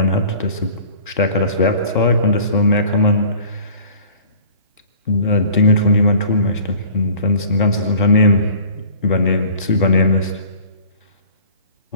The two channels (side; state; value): both; inverted; correlation -0.47